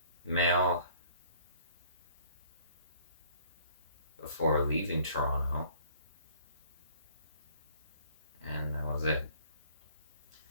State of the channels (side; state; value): both; inverted; correlation -0.57